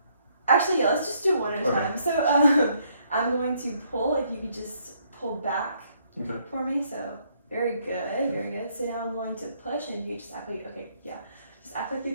Actually, yeah, let's just do one at a Okay. time. So, I'm going to pull. If you could just pull back Okay. for me. So very good, very good. So now I'm going to push, and you just act like just act like you're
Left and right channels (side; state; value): both; inverted; correlation -0.70